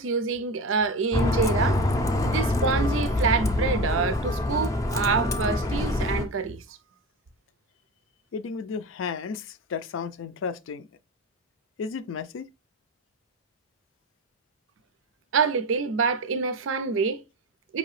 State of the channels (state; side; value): normal; both; correlation 0.25